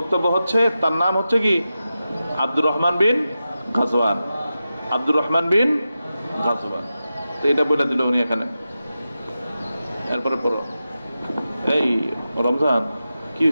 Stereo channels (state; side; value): inverted; both; correlation -0.91